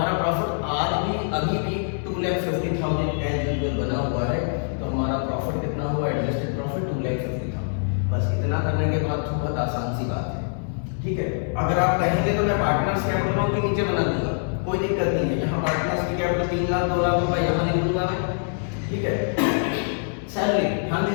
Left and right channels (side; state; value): right; silent; digital silence